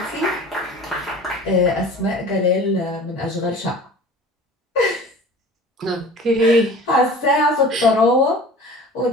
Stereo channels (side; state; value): both; normal; correlation 0.42